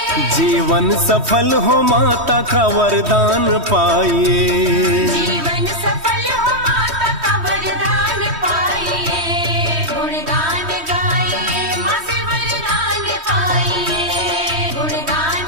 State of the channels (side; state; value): left; late; 3.1 ms